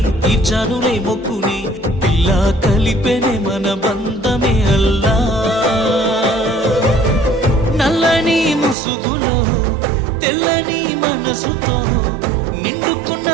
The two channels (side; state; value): left; drops out; at 8.8 s